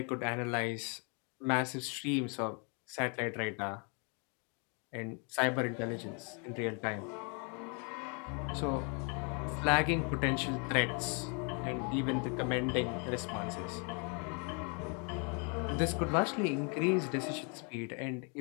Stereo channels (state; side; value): quieter; right; 36.4 dB